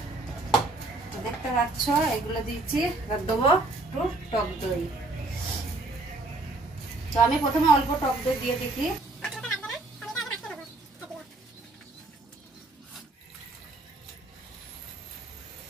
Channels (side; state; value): left; quieter; 3.0 dB